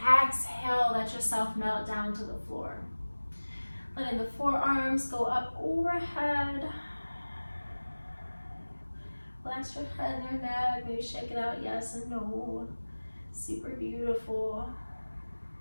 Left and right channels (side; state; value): both; inverted; correlation -1.00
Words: let yourself melt down to the floor. Letting the forearms go up overhead. Relax your head and your neck. Maybe shake it out, yes and no. Super beautiful.